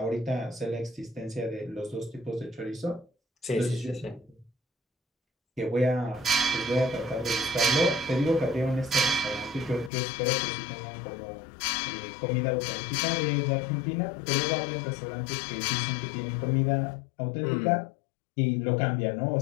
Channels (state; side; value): drops out; right; at 9.9 s